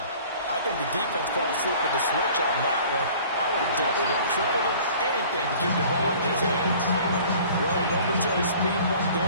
I think the defense fell asleep with the switch on that one. I would have doubled him, tripled him, anything to keep the ball in his hands. Well, a momentary speed bump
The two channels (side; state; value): both; inverted; correlation -0.49